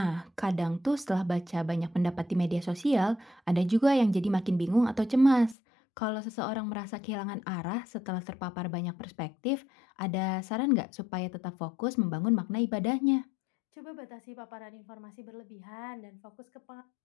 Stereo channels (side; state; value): right; drops out; at 5.6 s